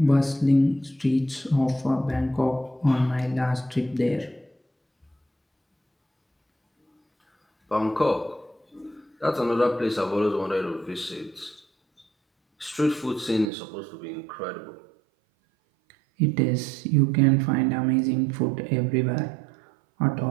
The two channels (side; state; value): left; drops out; at 13.5 s